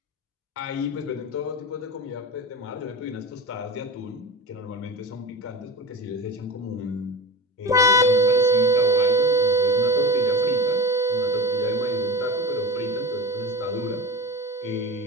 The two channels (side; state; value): both; normal; correlation 0.26